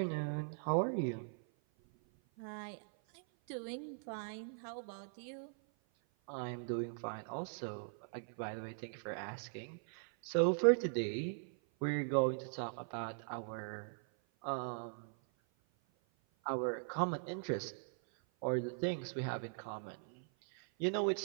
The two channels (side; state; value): left; silent; 51 dB below the other